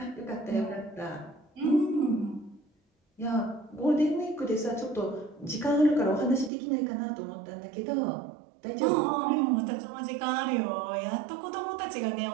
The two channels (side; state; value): left; drops out; at 6.5 s